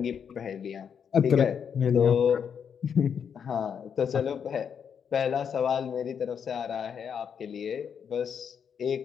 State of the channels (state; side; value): quieter; right; 7.4 dB